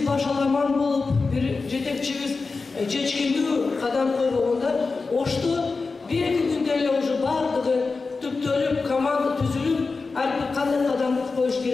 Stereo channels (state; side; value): quieter; right; 4.2 dB